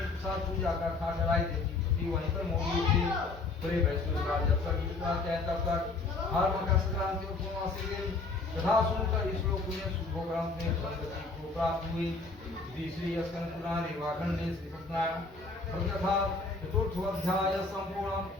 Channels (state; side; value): quieter; right; 3.7 dB